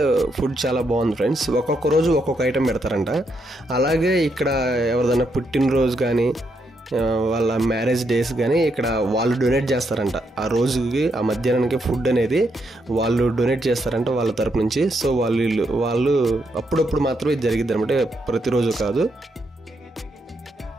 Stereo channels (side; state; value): both; normal; correlation 0.79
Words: ఫుడ్ చాలా బాగుంది ఫ్రెండ్స్. ఒక్కొక్క రోజు ఒక్కొక్క ఐటెం పెడతారంట. అలాగే ఇక్కడ ఎవరిదైనా పుట్టినరోజు కానీ వాళ్ళ మ్యారేజ్ డేస్ కానీ ఇక్కడ వాళ్ళు డొనేట్ చేస్తారంట. ఆ రోజుకి ఆ మధ్యాహ్నానికి ఫుడ్ అనేది వాళ్ళు డొనేట్ చేస్తారంట వాళ్ళ తరపు నుంచి. సో వాళ్ళు అప్పుడప్పుడు మాత్రమే జరిగిద్ది అనమాట, ప్రతిరోజు కాదు.